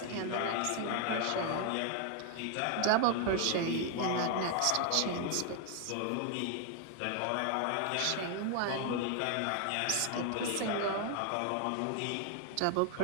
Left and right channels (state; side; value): different; both; correlation 0.00